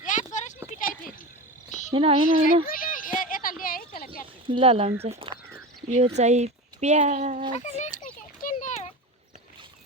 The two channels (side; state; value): both; normal; correlation 0.26